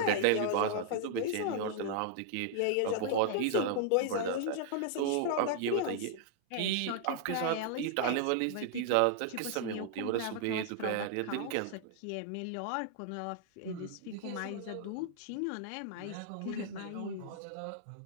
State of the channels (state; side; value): different; both; correlation -0.01